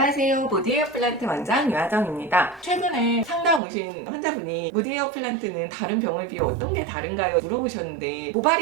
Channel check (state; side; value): drops out; left; at 3.6 s